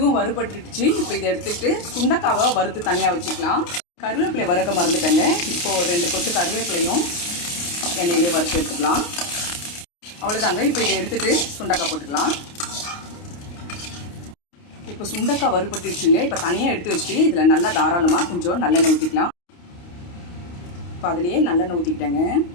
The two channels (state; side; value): late; right; 29 ms